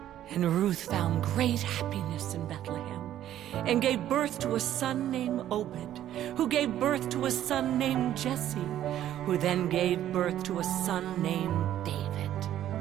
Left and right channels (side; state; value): left; quieter; 11.9 dB